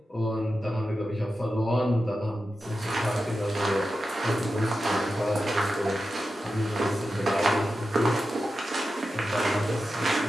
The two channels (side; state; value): both; normal; correlation 0.91